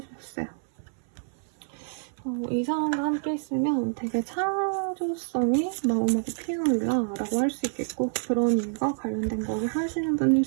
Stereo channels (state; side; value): silent; left; 58 dB below the other